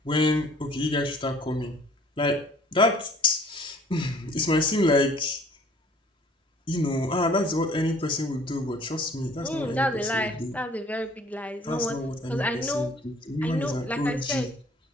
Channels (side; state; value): both; normal; correlation 0.54